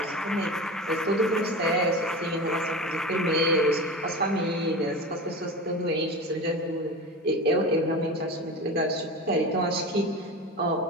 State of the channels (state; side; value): normal; both; correlation 0.28